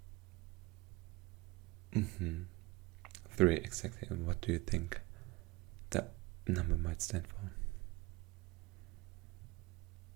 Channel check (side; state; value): left; quieter; 22.3 dB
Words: 3, exactly. And what do you think that number might stand for?